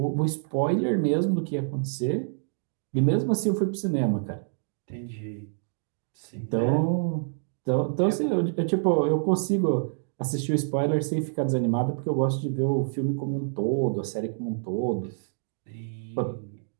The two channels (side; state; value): left; silent; digital silence